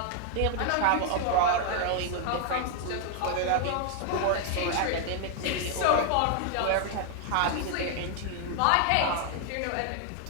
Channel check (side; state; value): both; different; correlation 0.00